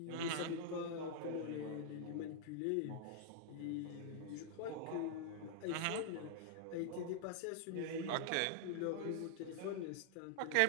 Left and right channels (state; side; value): different; both; correlation -0.01